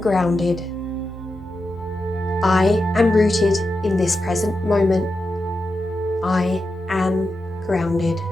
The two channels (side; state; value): both; normal; correlation 0.88